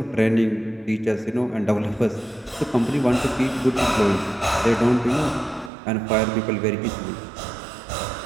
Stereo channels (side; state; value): left; drops out; at 5.7 s